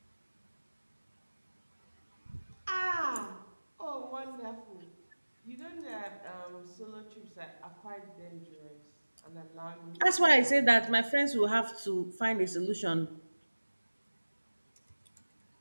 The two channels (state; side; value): inverted; both; correlation -1.00